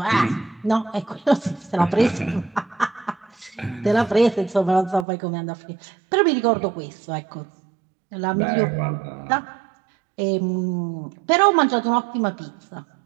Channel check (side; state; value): left; drops out; at 5.1 s